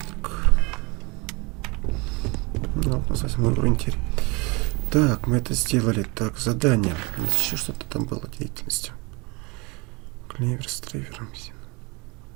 Так, мы это сделали. Так, задание. Еще что-то там было деятельностью. Клевер с трейвером.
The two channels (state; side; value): quieter; left; 27.5 dB